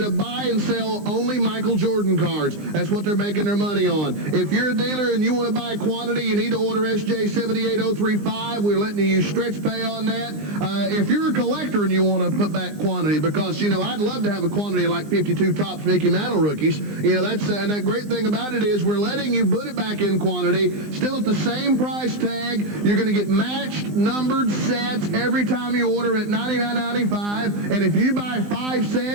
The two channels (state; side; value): late; left; 20 ms